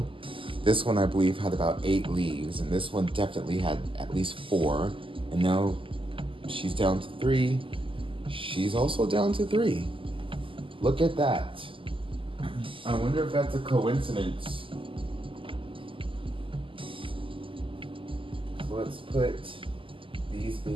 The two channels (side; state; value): left; late; 0.25 ms